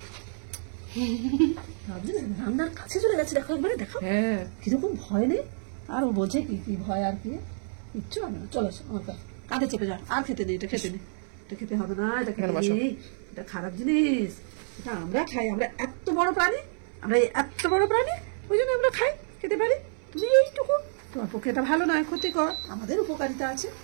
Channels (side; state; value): left; silent; 59 dB below the other